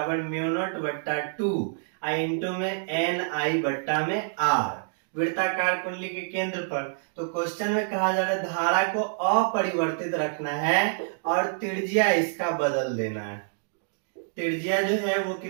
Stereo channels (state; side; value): silent; left; digital silence